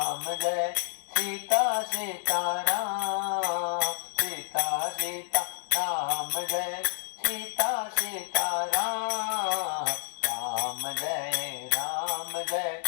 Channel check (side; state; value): right; silent; digital silence